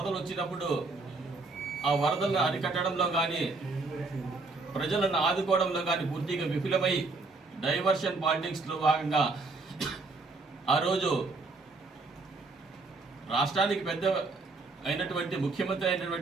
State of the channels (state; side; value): quieter; left; 3.6 dB